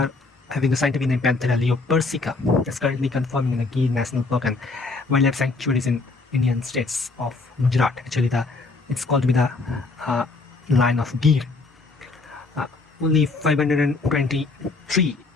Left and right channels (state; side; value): quieter; right; 3.7 dB